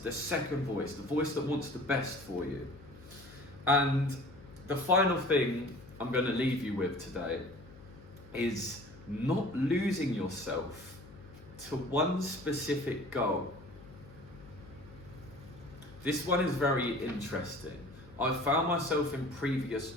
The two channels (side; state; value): left; noise; hum, 20 dB below the sound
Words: the second voice, the voice that wants the best for you. And the final thing I'm going to leave you with today is not losing yourself to one specific goal. This one is very interesting. I found myself in previous